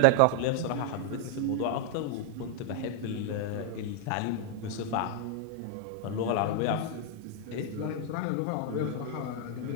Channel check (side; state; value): both; different; correlation 0.00